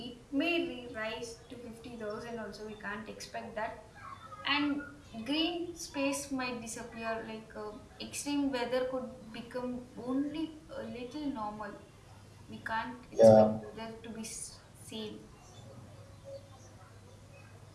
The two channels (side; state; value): both; identical; correlation 1.00